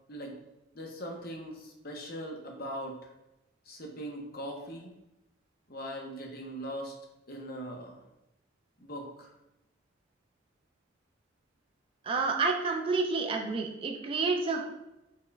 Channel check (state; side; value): quieter; left; 3.1 dB